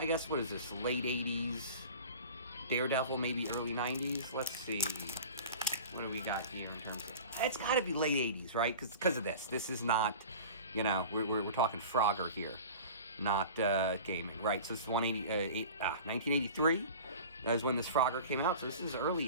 guess, what is this, late 80s Daredevil, maybe early 90s. Let's see. What do we got here in terms of... It's got to be late 80s, right? Because of this. This is not, you know, we're talking Frogger here, not gaming, right? So this is 1983 is when this Frogger came out, so this is early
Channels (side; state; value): both; inverted; correlation -0.38